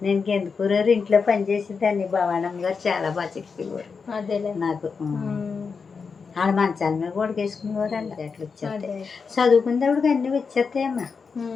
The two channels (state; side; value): quieter; right; 5.3 dB